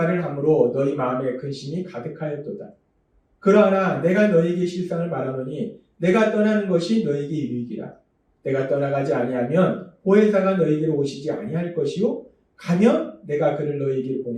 함으로 너희 마음에 근심이 가득하였도다. 그러나 내가 너희에게 실상을 말하노니 내가 떠나는 것이 너희에게 유익이라. 내가 떠나가지 아니하면 보혜사가 너희에게로 오시지 아니할 것이요 가면 내가 그를 너희에게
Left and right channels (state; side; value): identical; both; correlation 1.00